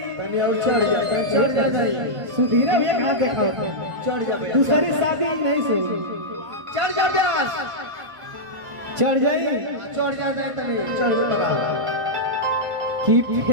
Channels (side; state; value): left; late; 1.5 ms